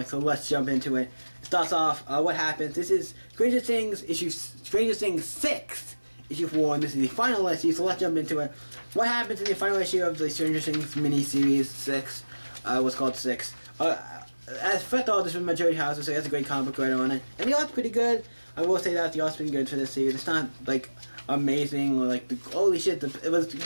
So let's jump into it. It starts off, what happens. This is Stranger Things 6, issue 4, and this is the final issue, so let's jump into it. What happens in the final issue of the Stranger Things mini-series 6, what's called 6. As first of all, this was Majority House, so he has a great comic book writer on it. And the art's pretty good. I will say that the art's been good for this series. It's not, like, amazing or like holy shit, but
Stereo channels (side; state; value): both; inverted; correlation -1.00